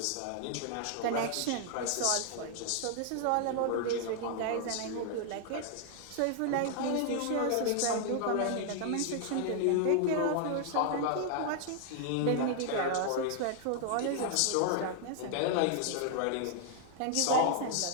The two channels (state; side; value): different; both; correlation 0.00